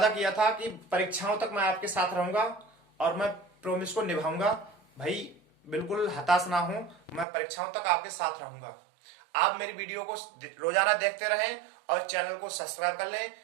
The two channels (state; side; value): drops out; left; at 7.2 s